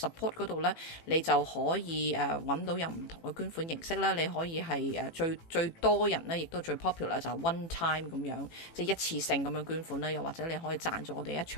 嗰度咧，你就可以揾到有唔同嘅捐款形式啦。你可以係最多人咧，亦都最 popular 就係 one time 咁樣，即係一次性咁樣捐款啦。又或者你可以贊助我哋一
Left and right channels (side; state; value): right; late; 18 ms